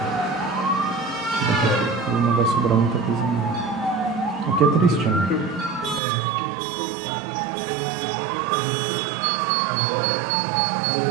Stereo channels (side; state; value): left; drops out; at 6.0 s